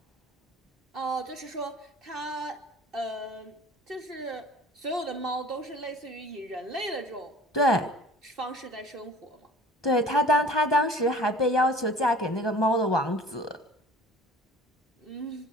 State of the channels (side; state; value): both; normal; correlation 0.46